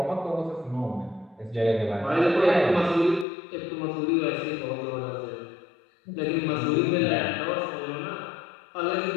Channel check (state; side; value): drops out; right; at 3.2 s